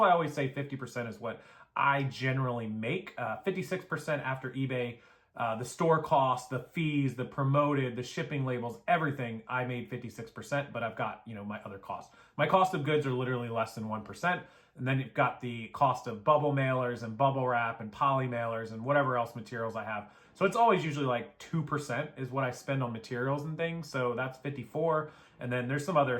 I always say 50% is what I generally make. 56% after eBay the store costs, the fees, the promoted, the shipping labels, everything, I made 56%, but I've got, my other costs. My cost of goods are literally less than 1%. And then you've got the cost of bubble mailers and bubble wrap and poly mailers and whatever else materials I have. So it's always usually like 2% is what I spend on materials and things. So that's 54. And then there's some other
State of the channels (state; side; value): identical; both; correlation 1.00